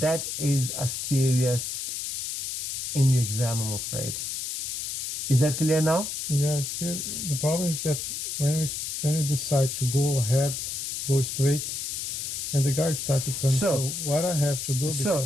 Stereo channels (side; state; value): left; noise; hiss, 4 dB below the sound